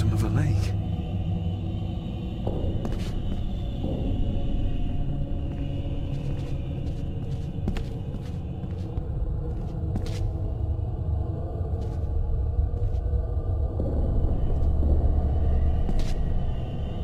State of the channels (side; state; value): both; identical; correlation 1.00